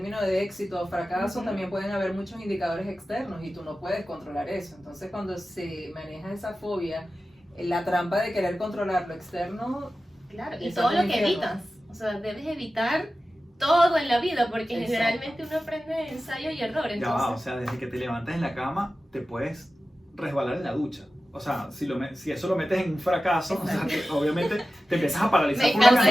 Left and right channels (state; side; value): normal; both; correlation 0.94